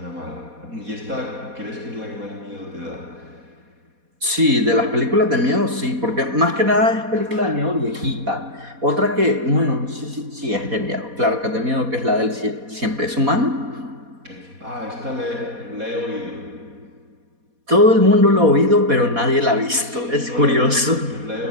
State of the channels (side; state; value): left; late; 4.2 ms